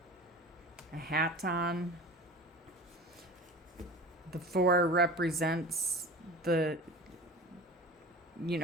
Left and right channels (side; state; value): both; normal; correlation 0.36